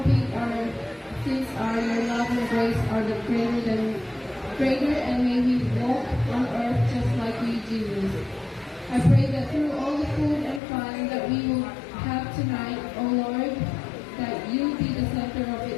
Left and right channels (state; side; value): drops out; right; at 10.6 s